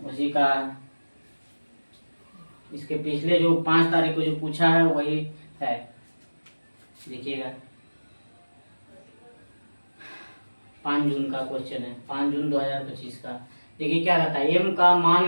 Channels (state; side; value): inverted; both; correlation -1.00